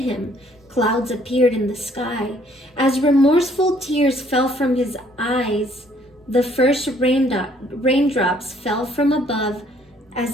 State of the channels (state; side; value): normal; both; correlation 0.63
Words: clouds appeared in the sky. As remorseful tears fell from his eyes, the first raindrops fell from above